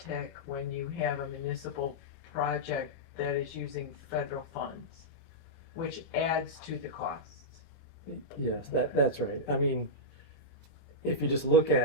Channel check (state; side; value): normal; both; correlation -0.10